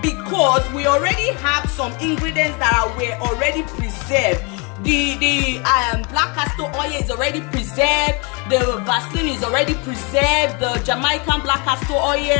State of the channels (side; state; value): right; quieter; 31.6 dB